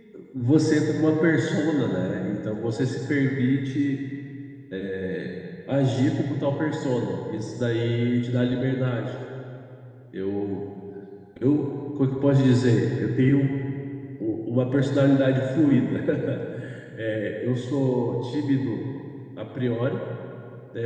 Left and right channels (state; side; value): identical; both; correlation 1.00